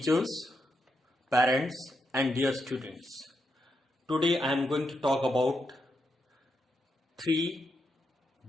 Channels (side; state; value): both; normal; correlation 0.83